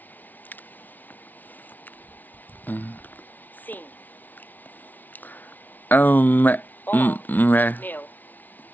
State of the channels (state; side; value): late; right; 0.082 ms